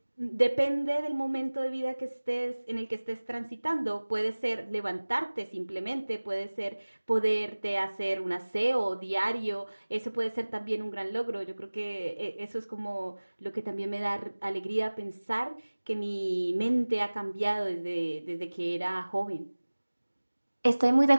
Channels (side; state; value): both; inverted; correlation -1.00